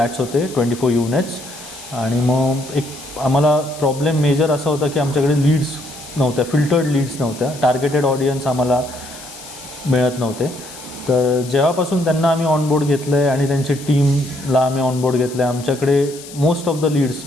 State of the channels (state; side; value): noise; left; hiss, 16 dB below the sound